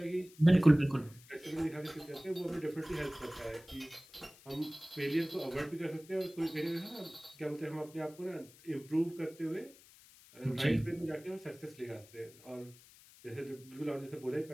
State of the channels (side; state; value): left; noise; hiss, 23 dB below the sound